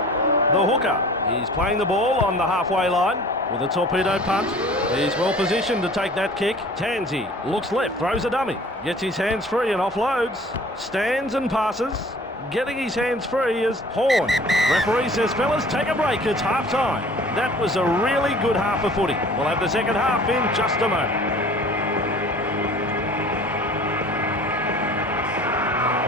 The hooker. He's playing the ball on the halfway line with a torpedo punt. He's well positioned to take that kick. Tansey looks left, throws a dummy. Gets his hands free and offloads. Stands and passes. Getting his hands free is Horn. Referee says, fellas, take a break. It's half-time. That was a really good half of footy. We'll have the second half in just a moment.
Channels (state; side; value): normal; both; correlation 0.47